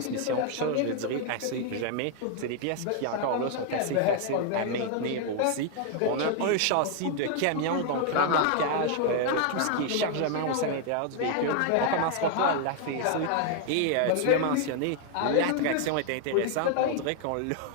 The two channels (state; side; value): different; both; correlation 0.00